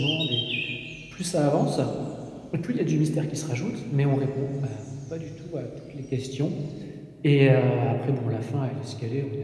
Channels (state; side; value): identical; both; correlation 1.00